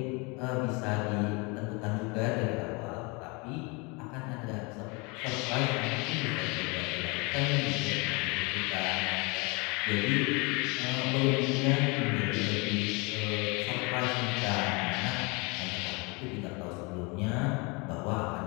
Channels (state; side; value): quieter; right; 28.7 dB